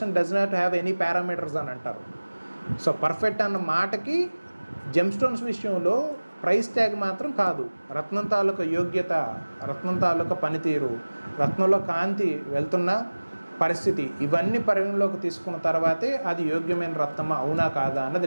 does not have any parameters అని అంటారు. సో పర్ఫెక్ట్ అన్న మాటకి జెమ్ స్టోన్స్ విషయంలో ప్రైస్ ట్యాగ్ మాత్రం కాదు, రత్నం తాలూకా యోగ్యత, రత్నం తాలూకా పనితీరు, రత్నంలో కాంతి వెళ్తున్న పరిస్థితి, ఇవన్నీ పరిగణలోకి తీసుకున్న తర్వాతే అది యోగ్యమైన రత్నమా అవునా కాదా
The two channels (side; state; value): both; inverted; correlation -1.00